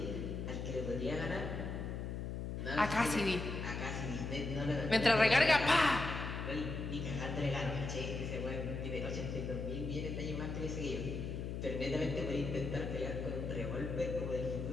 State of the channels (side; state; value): left; noise; hum, 4 dB below the sound